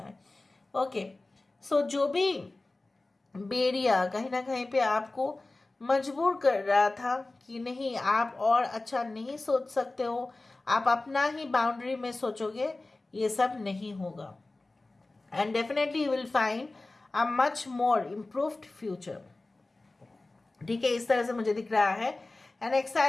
ओके, सो जो भी बेरिया कहीं ना कहीं पे आपको मजबूर कर रहा था कि नहीं आप और अच्छा नहीं सोच सकते हो, आप अपना ही बाउंड्री में सोचोगे, ये सब नहीं होगा. And definitely you will find a much more improved future. ठीक है, इस तरह से मुझे दिख रहा है an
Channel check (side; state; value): right; quieter; 3.1 dB